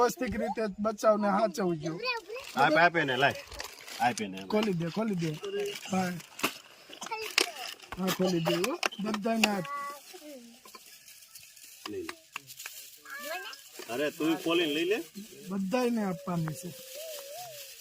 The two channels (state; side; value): identical; both; correlation 1.00